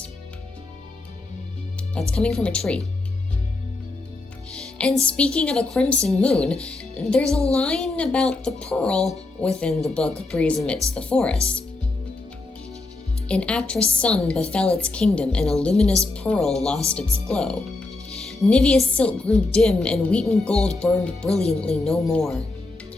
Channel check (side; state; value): right; quieter; 3.2 dB